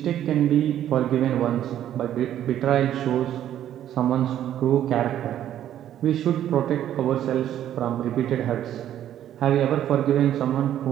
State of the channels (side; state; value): left; quieter; 11.3 dB